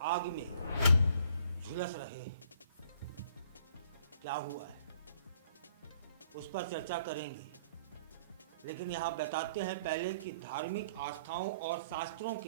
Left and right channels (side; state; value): both; inverted; correlation -0.61